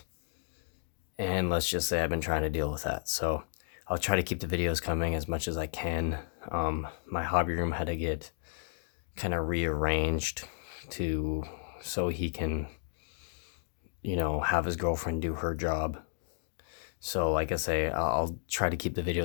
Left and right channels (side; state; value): right; silent; digital silence